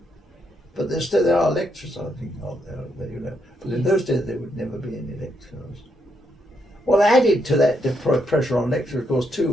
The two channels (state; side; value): normal; both; correlation 0.78